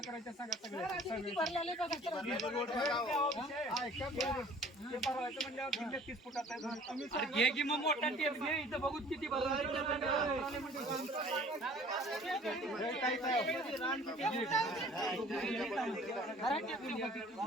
करायचा सांगा सगळं. म्हणल्यावर 30 फुटाचा घे की मग मोठा टेप घे. इथं बघू किती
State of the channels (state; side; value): normal; both; correlation 0.51